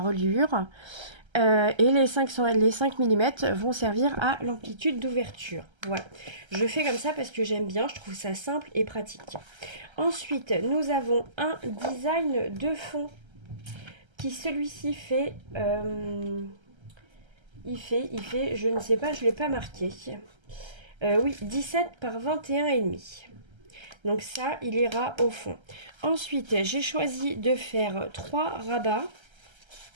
et les 5 mm vont servir à l'amplitude d'ouverture. Voilà, je fais comme ça parce que j'aime bien, je trouve ça simple et pratique. Ensuite, nous avons un design de fond qui celui-ci fait, il fait, je ne sais pas, je ne l'ai pas marqué. Oui, 17 par 21,5. Donc ça, il ira au fond. Ensuite, j'ai choisi de faire 3 rabats.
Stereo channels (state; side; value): late; left; 1.3 ms